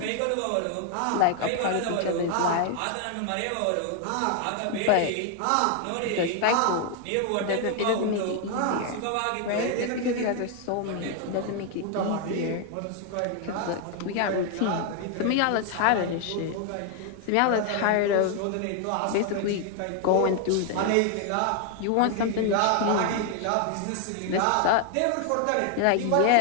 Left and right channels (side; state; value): both; different; correlation 0.00